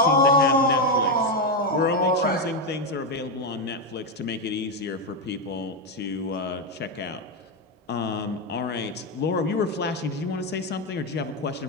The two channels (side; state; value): both; normal; correlation 0.07